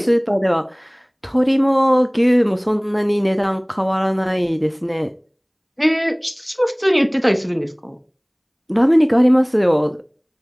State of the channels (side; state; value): both; identical; correlation 1.00